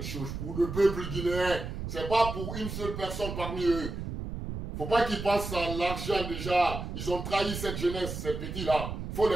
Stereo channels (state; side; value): noise; right; rumble, 6 dB below the sound